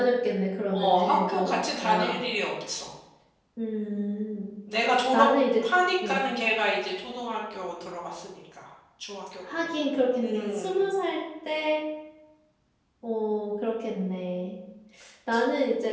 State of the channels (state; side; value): identical; both; correlation 1.00